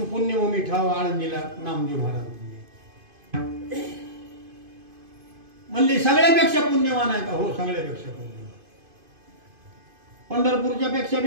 पुण्यभूमी ठाव आळंदीला नामदेव महाराज म्हणले. सगळ्यापेक्षा पुण्यवान आहे का? हो, सगळ्यापेक्षा पुण्यवान. पंढरपूरच्या पेक्षा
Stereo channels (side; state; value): left; late; 2.5 ms